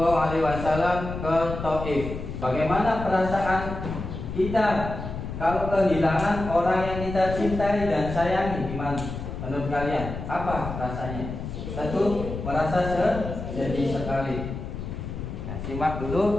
Alaihi Wasallam ke Taif. Bagaimana perasaan kita kalau kehilangan orang yang kita cintai dan sayangi? Gimana menurut kalian? Apa rasanya? Tentu merasa sedih sekali. Nah, simak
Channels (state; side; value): noise; left; rumble, 7 dB below the sound